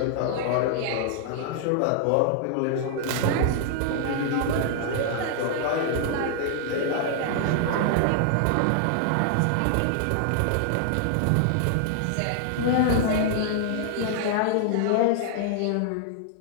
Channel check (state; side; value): different; both; correlation -0.01